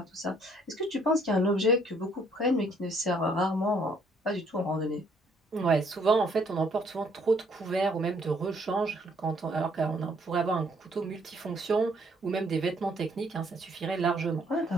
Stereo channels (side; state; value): both; normal; correlation 0.65